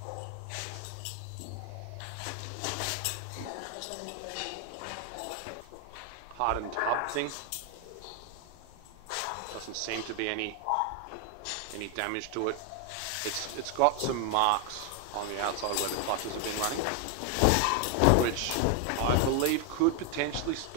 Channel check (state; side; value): different; both; correlation 0.01